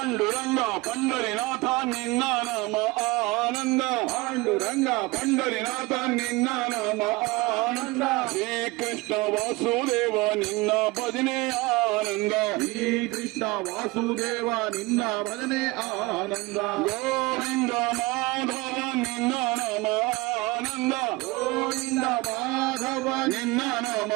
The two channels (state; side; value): quieter; left; 22.7 dB